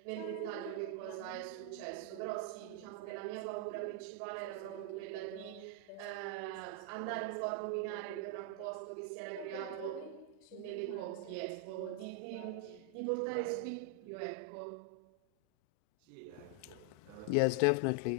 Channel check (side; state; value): both; different; correlation 0.00